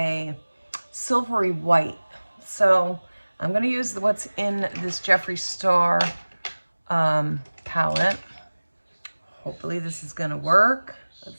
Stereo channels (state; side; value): inverted; both; correlation -1.00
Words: silvery white. So I'm gonna use what's in this Jeffree Star palette. Hopefully this is gonna work.